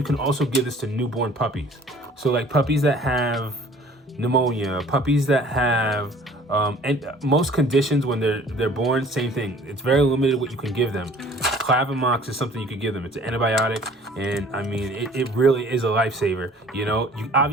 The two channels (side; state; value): both; normal; correlation 0.52